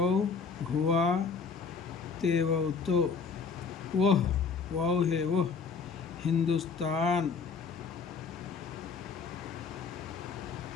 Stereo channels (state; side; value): quieter; right; 5.3 dB